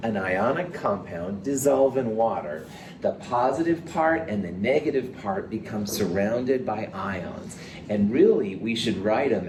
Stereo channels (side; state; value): both; identical; correlation 1.00